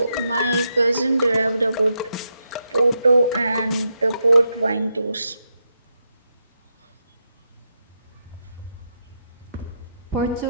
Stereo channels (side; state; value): both; inverted; correlation -0.83